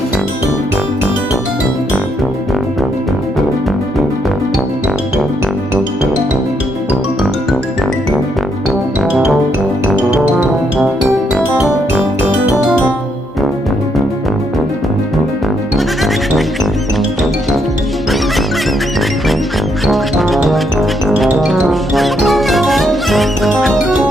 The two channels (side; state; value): both; normal; correlation 0.75